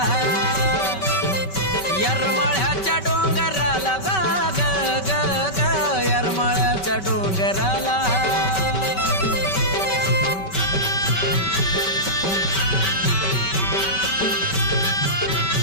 येरमाळ्याच्या डोंगराला ग ग ग ग, येरमाळ्याच्या डोंगराला.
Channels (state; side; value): late; right; 5.2 ms